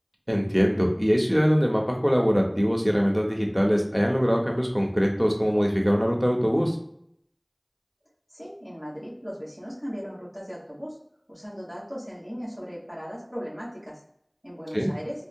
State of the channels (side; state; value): both; identical; correlation 1.00